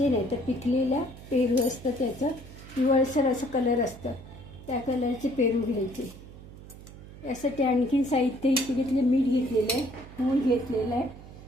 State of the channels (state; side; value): noise; right; hum, 17 dB below the sound